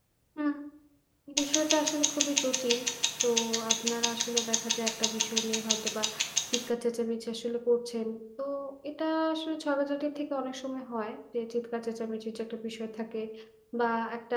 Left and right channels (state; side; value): identical; both; correlation 1.00